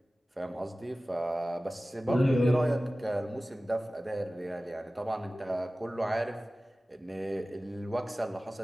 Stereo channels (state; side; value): normal; both; correlation 0.97